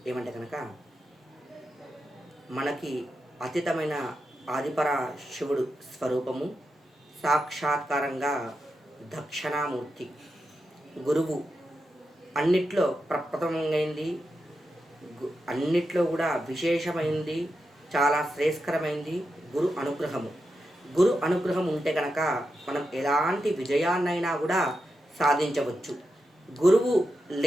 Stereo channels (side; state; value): both; normal; correlation 0.88